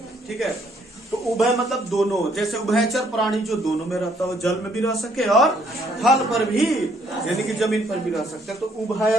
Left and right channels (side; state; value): both; normal; correlation 0.67